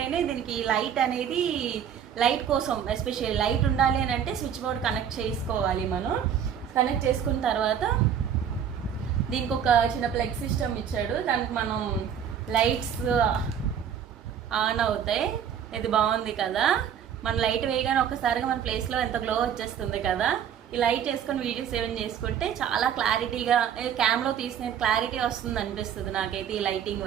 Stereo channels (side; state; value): left; quieter; 8.5 dB